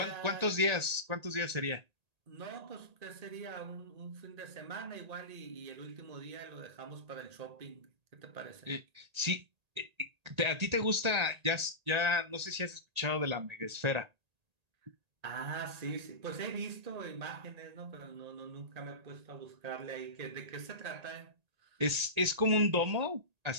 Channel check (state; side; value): late; left; 1.8 ms